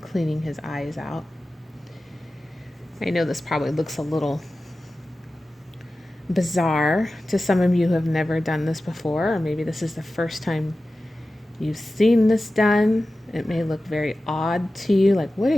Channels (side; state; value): both; normal; correlation 0.95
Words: his eyes out. I know this probably looks a little bizarre to some of you who have never done this before, or maybe this is the first time you've seen this done. It may look very odd to you, like, what are